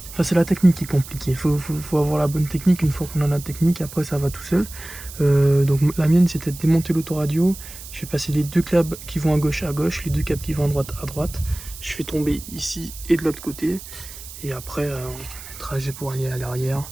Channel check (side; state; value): right; noise; hiss, 14 dB below the sound